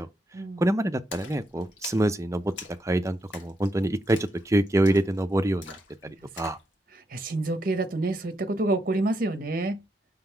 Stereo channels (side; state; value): both; normal; correlation 0.81